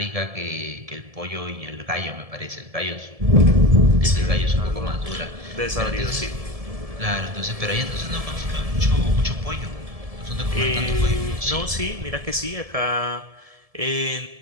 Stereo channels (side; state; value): left; late; 1.7 ms